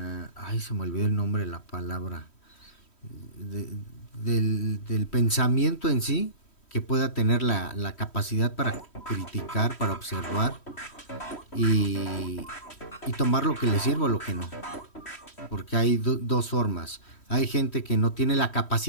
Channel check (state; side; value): late; right; 3.1 ms